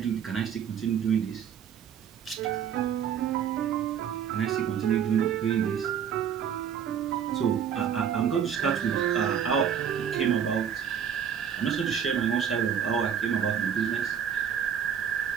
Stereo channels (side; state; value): left; quieter; 8.2 dB